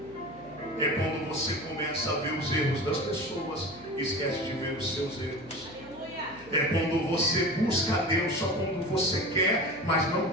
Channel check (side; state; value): left; noise; hum, 24 dB below the sound